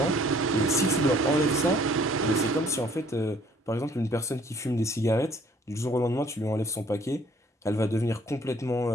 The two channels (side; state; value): both; normal; correlation 0.59